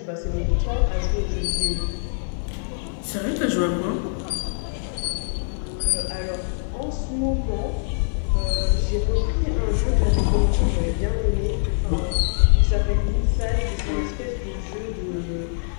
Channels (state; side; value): silent; right; digital silence